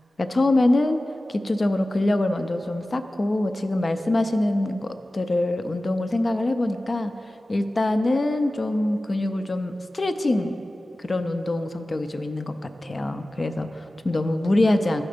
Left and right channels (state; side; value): normal; both; correlation 0.96